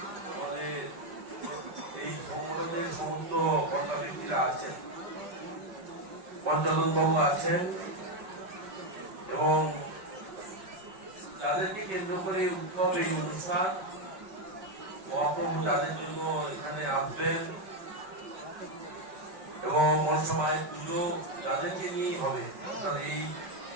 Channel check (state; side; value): late; left; 5.4 ms